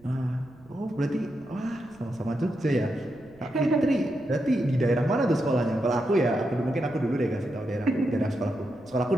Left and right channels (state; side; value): noise; right; rumble, 27 dB below the sound